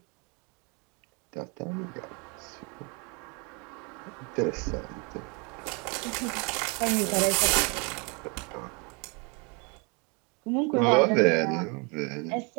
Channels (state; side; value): quieter; left; 32.1 dB